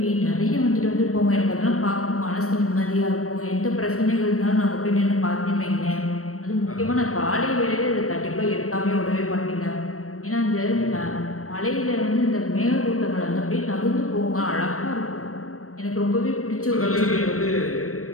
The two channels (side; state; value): right; late; 0.64 ms